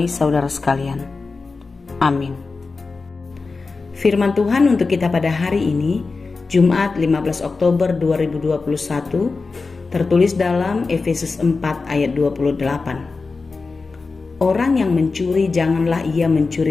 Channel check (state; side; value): quieter; right; 4.1 dB